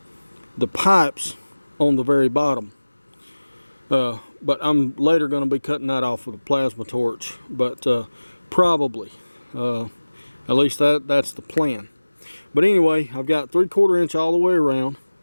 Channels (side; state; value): both; inverted; correlation -1.00